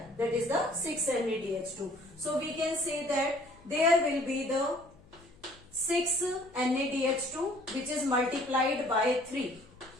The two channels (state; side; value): noise; left; hum, 27 dB below the sound